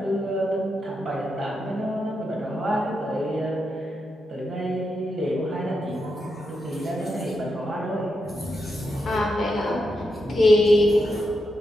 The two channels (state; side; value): normal; both; correlation 0.85